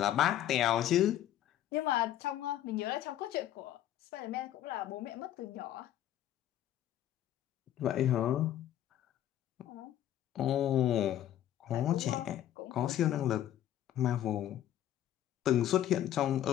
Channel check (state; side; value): quieter; right; 11.9 dB